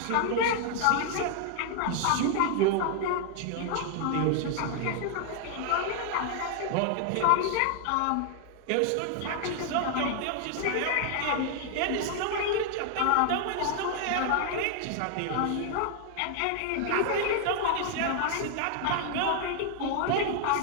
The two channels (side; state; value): both; different; correlation 0.00